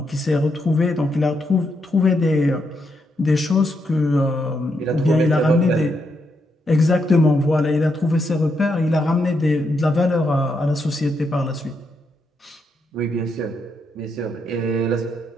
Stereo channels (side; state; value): both; normal; correlation 0.80